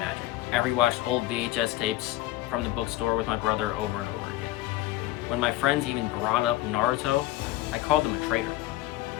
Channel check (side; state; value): right; quieter; 16.0 dB